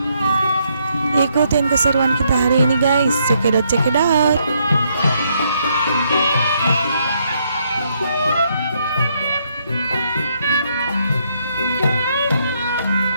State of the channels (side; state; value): both; inverted; correlation -0.74